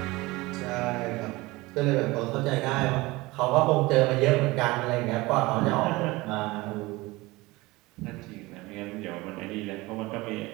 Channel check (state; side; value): quieter; left; 21.4 dB